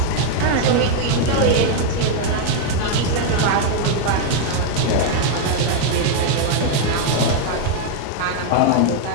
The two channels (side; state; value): both; different; correlation 0.00